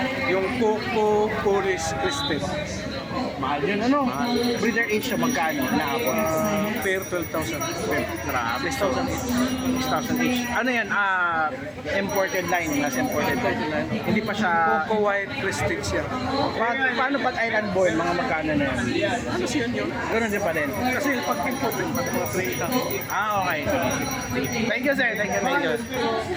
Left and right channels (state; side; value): identical; both; correlation 1.00